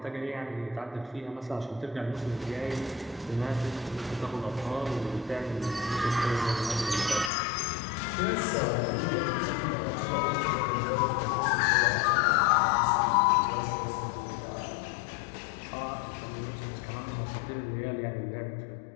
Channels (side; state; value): right; drops out; at 7.3 s